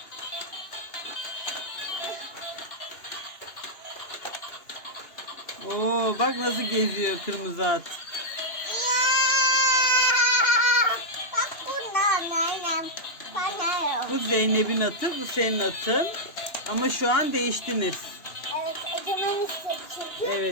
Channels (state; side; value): late; right; 2.9 ms